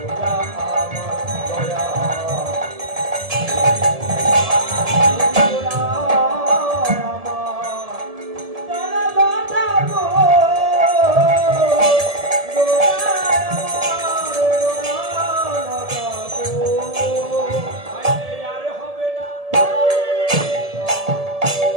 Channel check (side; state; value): left; late; 1.7 ms